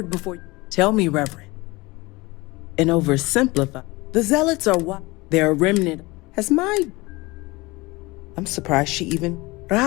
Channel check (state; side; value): quieter; right; 22.6 dB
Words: before you. Tell me, Reverend. And oversimplify. The Zealots are what? They're a remnant. I'm surprised she even...